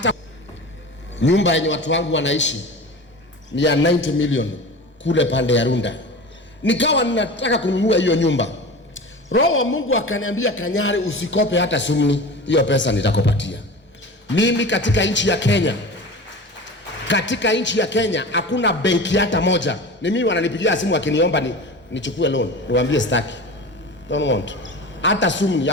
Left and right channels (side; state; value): both; normal; correlation 0.33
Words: nyumba yenye watu wangu wanaishi ni ya 90 million kule pande ya Runda. Nikawa ninataka kununua hiyo nyumba. Roho wa Mungu akaniambia, Kanyari, usikope hata sumni, hiyo pesa nitakupatia. Mimi katika nchi ya Kenya hakuna benki hata moja. Ni mimi wananipigia simu wakiniomba nichukue loan. Niwaambie staki. Don't want. Hata sumni,